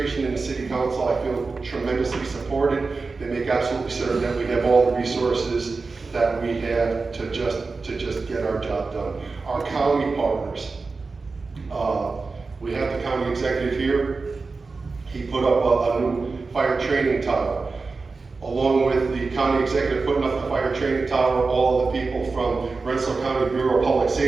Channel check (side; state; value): left; quieter; 4.1 dB